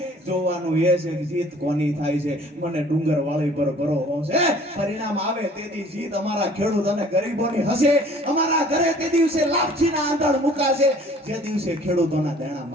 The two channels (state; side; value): normal; both; correlation 0.52